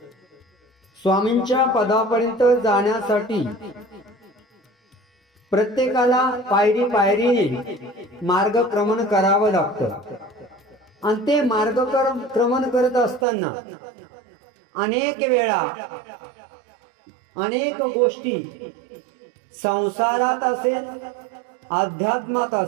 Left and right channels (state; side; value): drops out; left; at 13.2 s